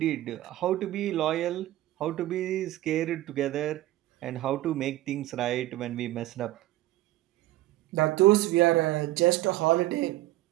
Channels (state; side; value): quieter; left; 15.9 dB